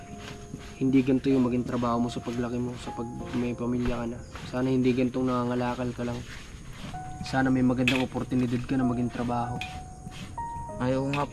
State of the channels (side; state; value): both; identical; correlation 1.00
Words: hindi ganito yung maging trabaho mo sa paglaki mo, sa pag may pamilya ka na. Sana hindi ganitong nangangalakal ka lang. Sana may magandang oportunidad ka na maging trabaho. Ayaw nga